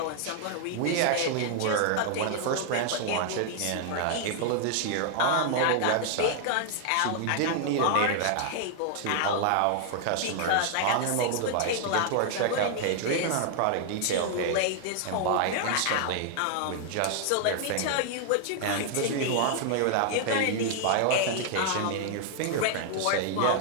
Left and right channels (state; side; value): different; both; correlation 0.00